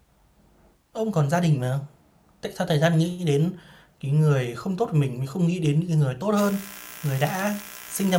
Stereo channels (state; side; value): identical; both; correlation 1.00